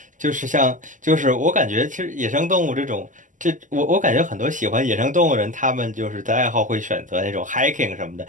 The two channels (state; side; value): late; left; 0.37 ms